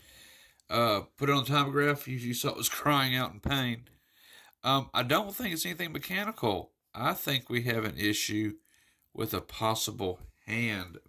Put it on the timograph, you saw it was crying out in pain. I don't think it's anything mechanical. I think we have an issue with a possible hand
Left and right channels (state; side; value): identical; both; correlation 1.00